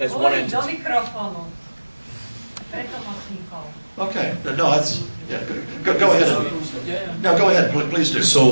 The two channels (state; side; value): inverted; both; correlation -1.00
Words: one entity? Okay. No, that's yeah. Go ahead. No, go ahead. Please do.